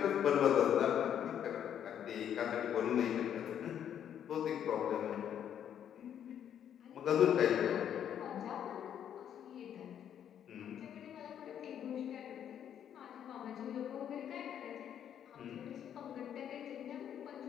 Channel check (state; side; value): quieter; right; 9.5 dB